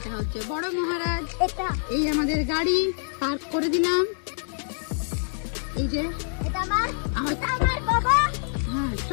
হচ্ছে বড় মহারাজ। এই আমাদের গাড়ি পার্ক করে দিলাম। এই যে আমার বাবা, হ্যাঁ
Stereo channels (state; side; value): silent; right; digital silence